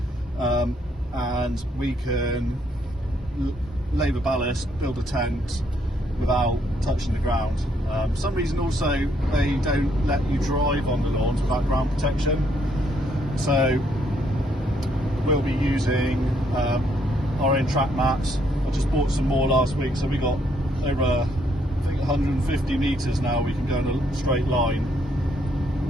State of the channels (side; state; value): both; normal; correlation 0.71